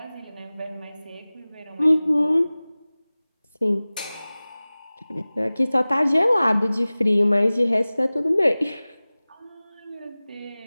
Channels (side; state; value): both; inverted; correlation -0.99